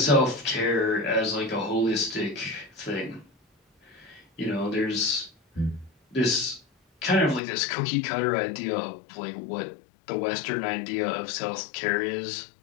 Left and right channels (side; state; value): right; drops out; at 7.4 s